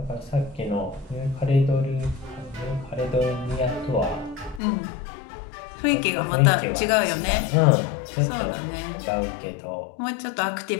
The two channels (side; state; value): right; drops out; at 4.6 s